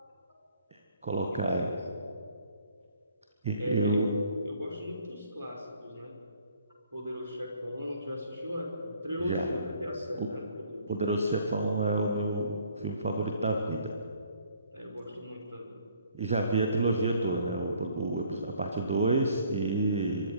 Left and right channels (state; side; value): inverted; both; correlation -0.60